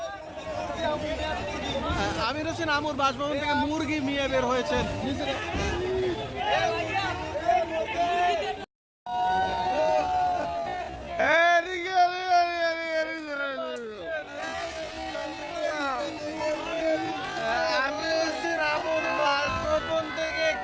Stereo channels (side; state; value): both; identical; correlation 1.00